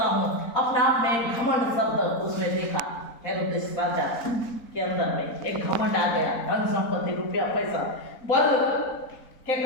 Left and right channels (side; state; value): right; late; 4.1 ms